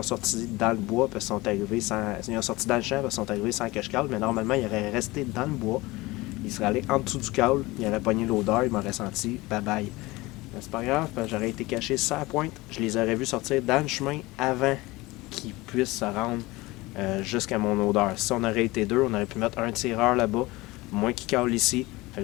sorti dans le bois parce qu'ils sont arrivés sans. Ils ont sorti dans le champ parce qu'ils sont arrivés sans que je cale, mais normalement, ils auraient resté dans le bois. Ils seraient allés en dessous du call, ils auraient pogné l'odeur, ils m'auraient senti bye bye. Mais c'est pas grave, parce que j'aurais été caché sur la pointe. Je les aurais vus sortir dans le chemin avant qu'ils puissent se rendre jusqu'à mon odeur. Si on aurait été deux, on aurait pu mettre un tireur là-bas, moi qui cale ici. Fait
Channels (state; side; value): quieter; right; 21.1 dB